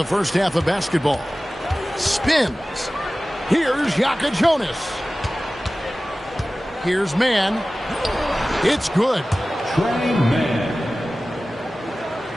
first half of basketball. Spins. Here's Yaka Jonas. Here's Mann. It's good. Trey Mann.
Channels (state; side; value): normal; both; correlation 0.97